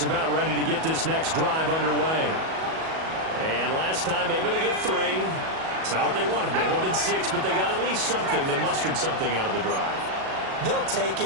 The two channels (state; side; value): late; left; 37 ms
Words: about ready to get this next drive underway. And last time able to get 3. That's not what they wanted. They wanted 6, but they got at least something. They mustered something out of the drive. They'll take